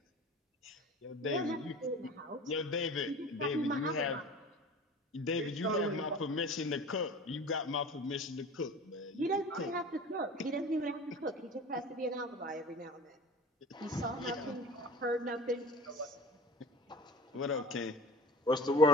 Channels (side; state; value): both; normal; correlation 0.39